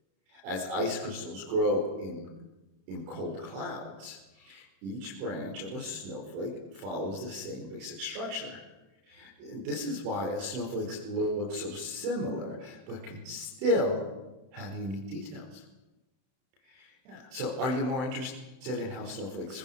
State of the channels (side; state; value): left; late; 31 ms